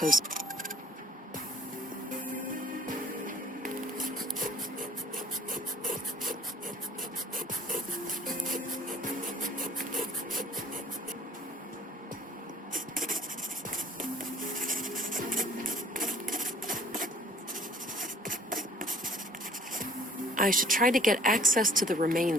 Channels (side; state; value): both; normal; correlation 0.54